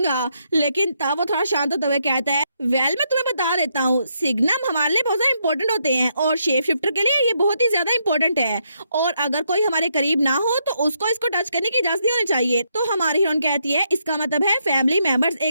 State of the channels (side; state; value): both; inverted; correlation -0.77